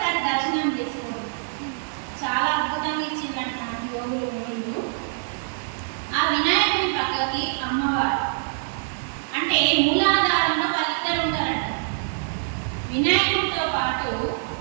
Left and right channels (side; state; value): left; silent; 62 dB below the other